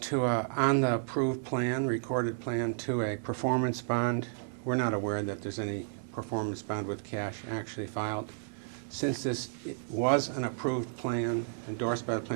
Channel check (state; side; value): silent; left; digital silence